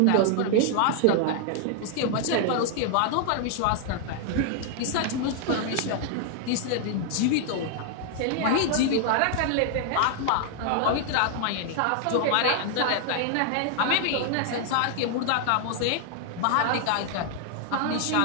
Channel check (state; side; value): different; both; correlation 0.00